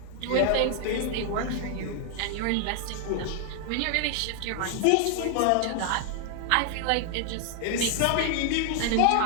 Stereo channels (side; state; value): both; different; correlation 0.00